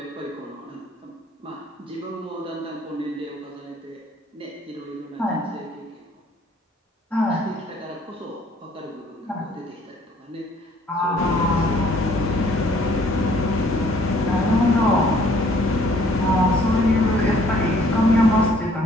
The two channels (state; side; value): normal; both; correlation 0.60